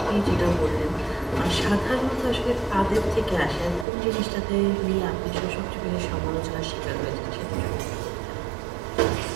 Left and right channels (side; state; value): left; drops out; at 3.9 s